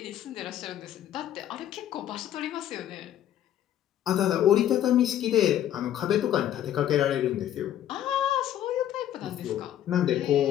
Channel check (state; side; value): quieter; right; 11.4 dB